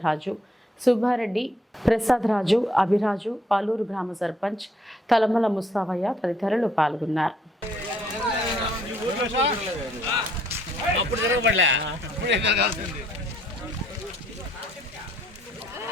రాజు, సుబ్బారెడ్డి, ప్రసాద్ రాజు, అభిరాజు, పాలూరు గ్రామ సర్పంచ్ తలమల ముస్తావయ్య తదితరులు పాల్గొన్నారు.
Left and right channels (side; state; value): both; normal; correlation 0.67